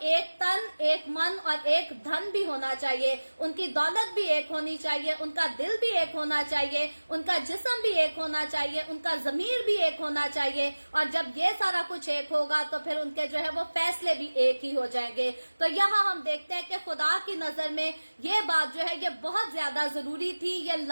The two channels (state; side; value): inverted; both; correlation -1.00